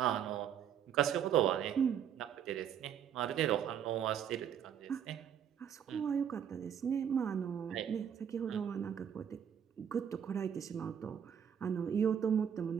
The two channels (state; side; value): quieter; left; 8.7 dB